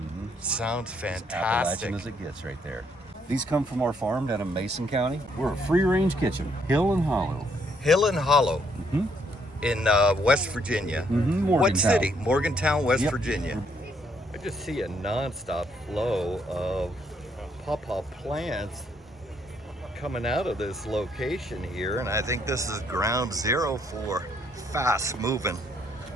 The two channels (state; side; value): normal; both; correlation 0.70